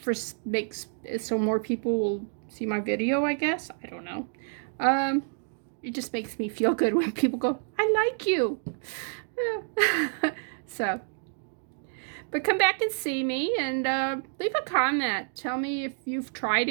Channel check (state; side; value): silent; left; digital silence